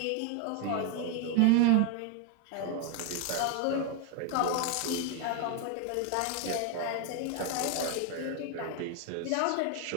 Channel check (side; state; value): both; different; correlation 0.01